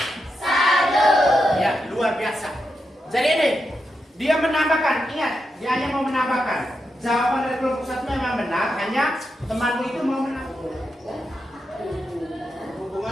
Ya, luar biasa. Jadi ini, dia menambahkan, ingat, dia hanya mau menambahkan. Jawaban dari kelompok 1 memang benar, hanya temanmu itu mau menambahkan.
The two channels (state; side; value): normal; both; correlation 0.86